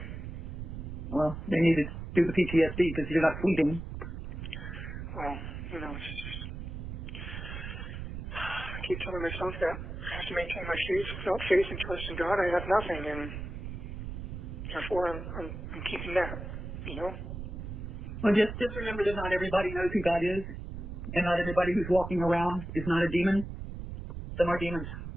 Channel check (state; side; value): noise; right; rumble, 7 dB below the sound